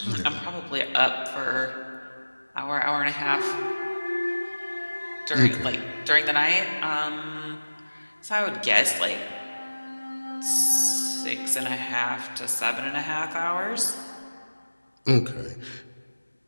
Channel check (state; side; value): inverted; both; correlation -1.00